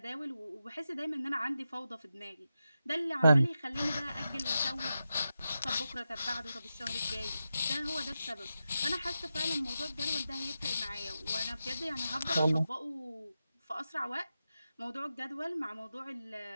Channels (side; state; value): both; inverted; correlation -0.90